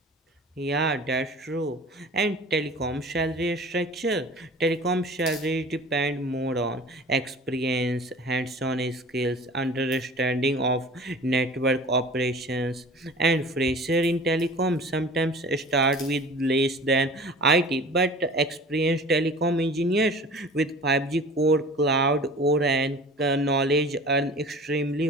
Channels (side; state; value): both; normal; correlation 0.42